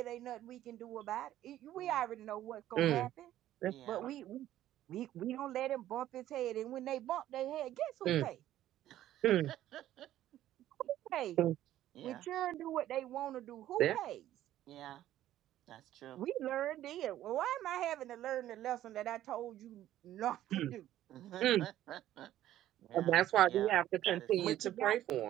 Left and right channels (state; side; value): quieter; left; 13.0 dB